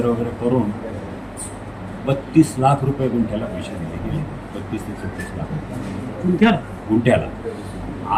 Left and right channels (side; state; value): both; identical; correlation 1.00